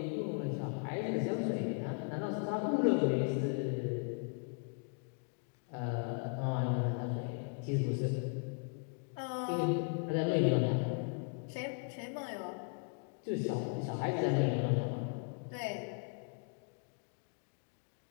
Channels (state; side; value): quieter; right; 39.2 dB